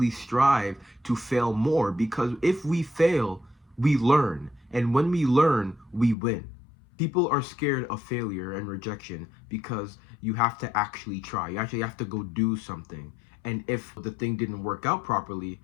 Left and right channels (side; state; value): right; drops out; at 6.2 s